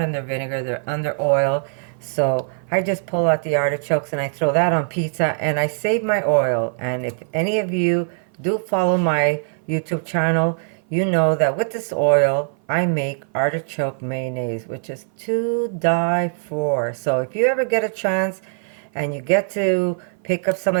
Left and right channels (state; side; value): silent; left; 57 dB below the other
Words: under vinegar, they're under oil. So I just pull out the artichokes and I throw that on pizza and I save my oil. And if any of you do follow my YouTube channel, you know that with this oil, I make artichoke mayonnaise, which is to die for. So if you ever get a chance and you get to pick up some